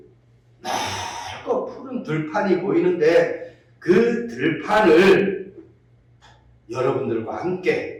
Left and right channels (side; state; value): both; identical; correlation 1.00